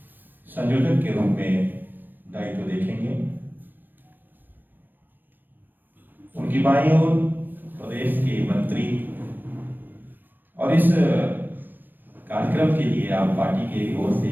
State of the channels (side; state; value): left; late; 0.090 ms